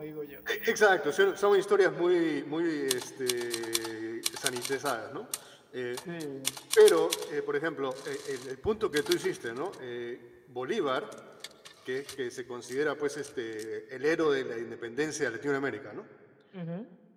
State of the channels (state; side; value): identical; both; correlation 1.00